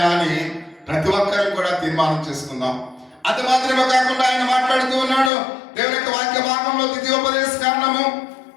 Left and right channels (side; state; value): right; drops out; at 5.3 s